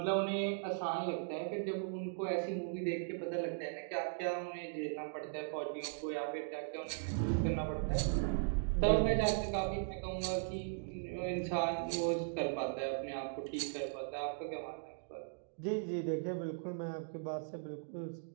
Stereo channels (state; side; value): silent; left; digital silence